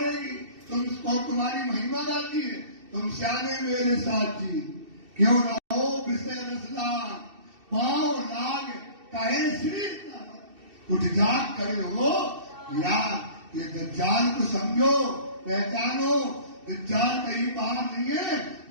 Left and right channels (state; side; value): late; left; 2.7 ms